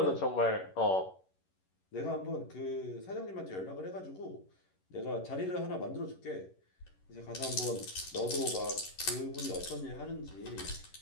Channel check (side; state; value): right; late; 11 ms